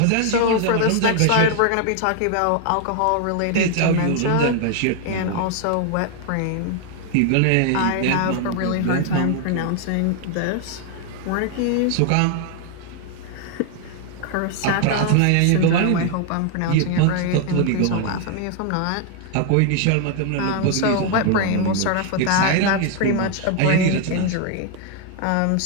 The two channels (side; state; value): both; different; correlation 0.00